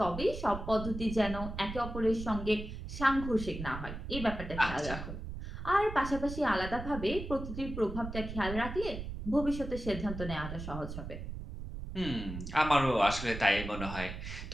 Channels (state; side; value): noise; right; rumble, 8 dB below the sound